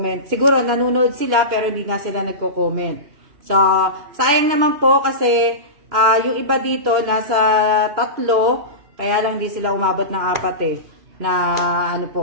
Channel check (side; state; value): left; late; 2.8 ms